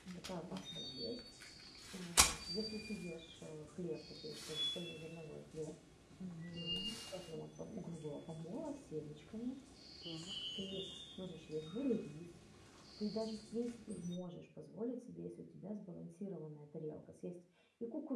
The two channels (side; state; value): both; identical; correlation 1.00